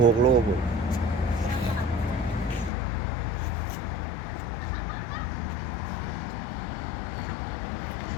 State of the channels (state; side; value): drops out; right; at 2.7 s